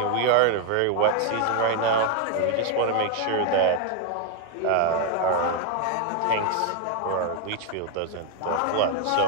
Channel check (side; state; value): both; different; correlation 0.00